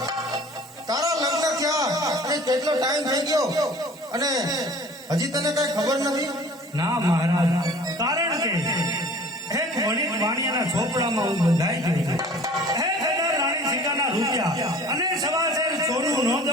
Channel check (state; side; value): normal; both; correlation 0.47